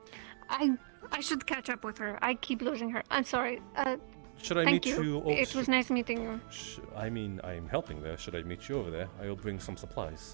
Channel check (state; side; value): silent; left; 53 dB below the other